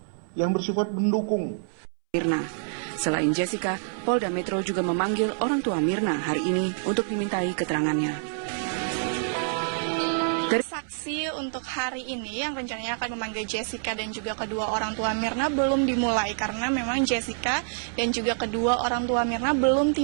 yang bersifat mendukung. Mirna. Selain Jessica, Polda Metro juga memanggil orang tua Mirna hari ini untuk dimintai keterangannya. Saksi untuk hari ini yang rencananya akan memanggil Jessica dan juga kedua orang tua Mirna belum dimulai karena memang Jessica dan juga kedua orang tua Mirna belum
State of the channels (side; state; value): left; silent; 60 dB below the other